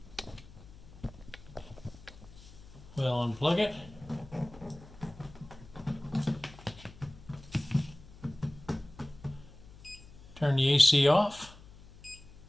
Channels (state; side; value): noise; left; hum, 20 dB below the sound